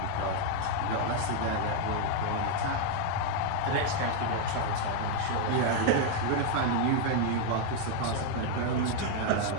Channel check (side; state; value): both; different; correlation 0.01